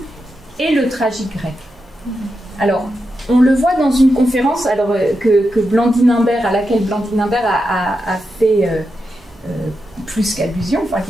et le tragique grec. Alors, on le voit dans une conférence que Blandine Imbert, à laquelle Blandine Imbert a fait plus qu'allusion, enfin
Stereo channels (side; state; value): both; normal; correlation 0.87